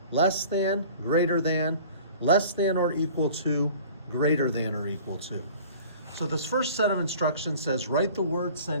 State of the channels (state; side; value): inverted; both; correlation -0.45